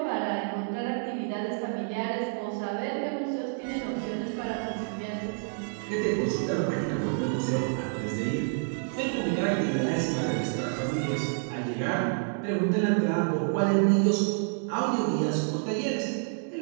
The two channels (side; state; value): left; silent; 59 dB below the other